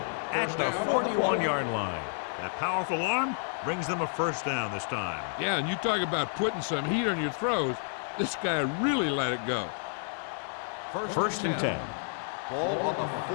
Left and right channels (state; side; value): silent; right; digital silence